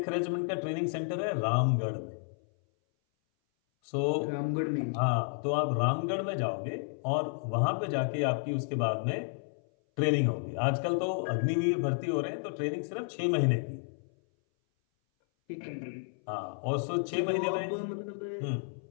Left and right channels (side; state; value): right; silent; 57 dB below the other